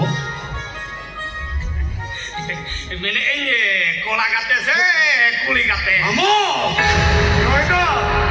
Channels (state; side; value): identical; both; correlation 1.00